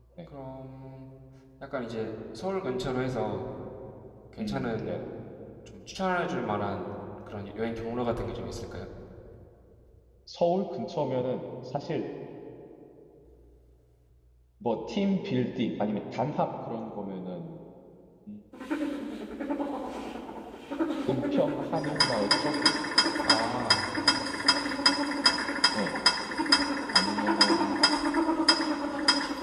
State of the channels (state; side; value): identical; both; correlation 1.00